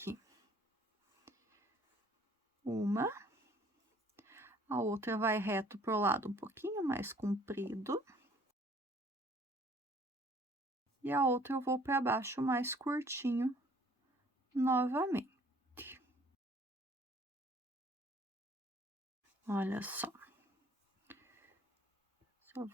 Uma, a outra vai reto pro lado um pouquinho mais comprido. E a outra eu vou para baixo mais curtinho novamente. Olha só. Só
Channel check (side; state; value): both; normal; correlation 0.57